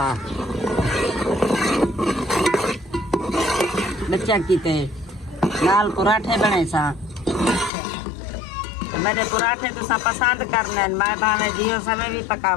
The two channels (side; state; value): right; drops out; at 7.7 s